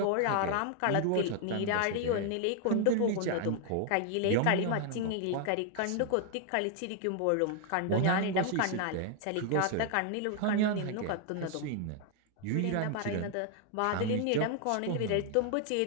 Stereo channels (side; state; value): both; different; correlation 0.00